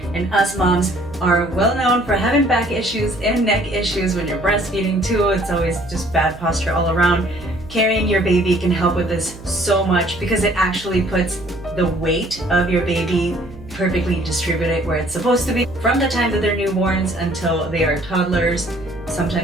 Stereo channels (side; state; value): right; noise; hum, 17 dB below the sound